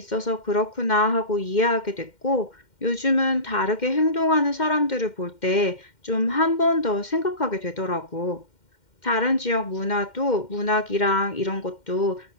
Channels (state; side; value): late; right; 2.1 ms